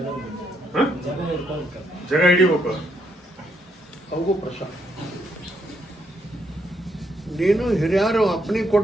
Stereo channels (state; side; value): normal; both; correlation 0.76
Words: ಜಾಗ ಹಿಡಿಬೇಕು. ಅವಗೂ ಪ್ರಸಾದ. ನೀನು ಹಿರಿಯರು ಅಪ್ಪನಿಗೆ